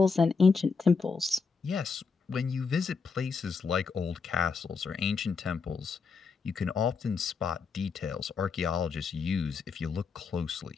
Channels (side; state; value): right; quieter; 5.0 dB